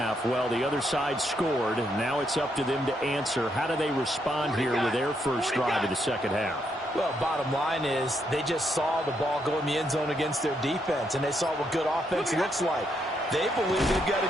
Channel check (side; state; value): both; normal; correlation 0.77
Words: Well, the other side scored. Now it's up to them to answer. How do they respond here with their first drive of the 2nd half? Well, bottom line is they just saw the ball go in the end zone against their defense, and they saw what good offense looks like. They believe they've got